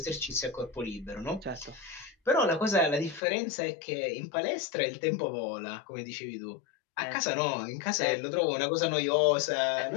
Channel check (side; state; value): right; drops out; at 3.2 s